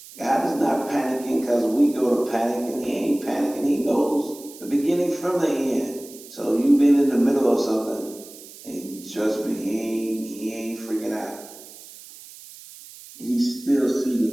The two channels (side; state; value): right; noise; hiss, 18 dB below the sound